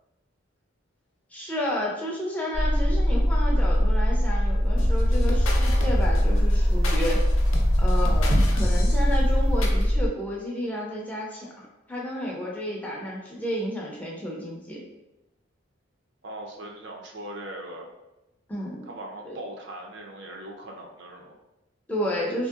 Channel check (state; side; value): normal; both; correlation 0.89